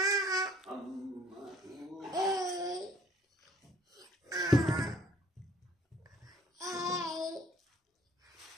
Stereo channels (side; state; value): both; normal; correlation 0.58